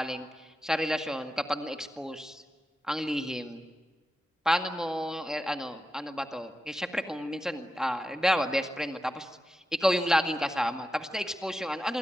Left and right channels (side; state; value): both; normal; correlation 0.90